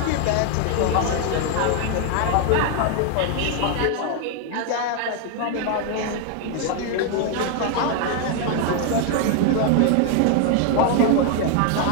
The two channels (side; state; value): both; different; correlation 0.00